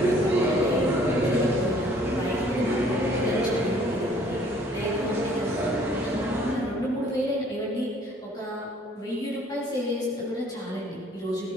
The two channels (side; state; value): both; normal; correlation 0.58